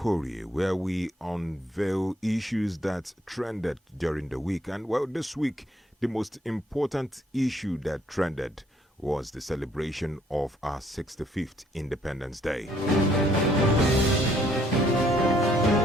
where we unveil issues that trended during the week. And well, this week, the most important issue that trended was the celebration of our 65th Independence Day.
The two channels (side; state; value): both; normal; correlation 0.66